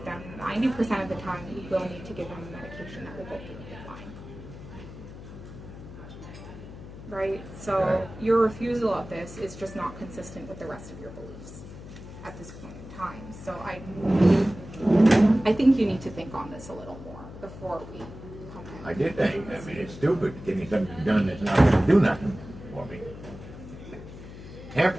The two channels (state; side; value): noise; left; hum, 14 dB below the sound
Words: them. 90% of the time, you will need to give them a medication that will go through the PICC line. Right? So Right. your refusal of this is just not consistent with the rest of your beliefs at this point in time. So I think you need to think on this a little more before we come in. I did think, I mean, it's stupid getting something done that's not gonna do nothing for me.